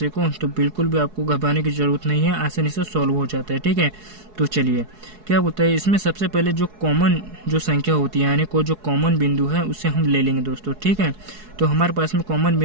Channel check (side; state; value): left; late; 4.7 ms